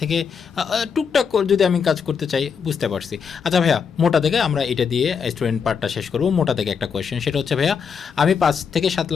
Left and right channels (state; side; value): quieter; right; 6.4 dB